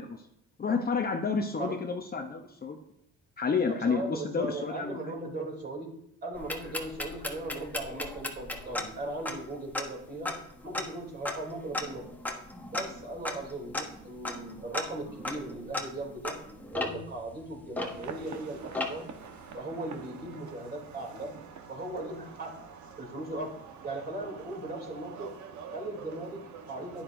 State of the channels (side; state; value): both; normal; correlation 0.38